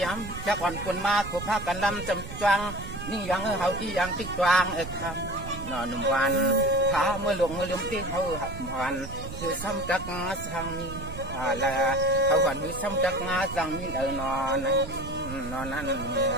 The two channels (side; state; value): right; noise; rumble, 10 dB below the sound